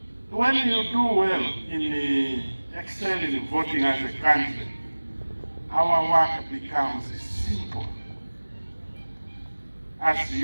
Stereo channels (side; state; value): both; inverted; correlation -1.00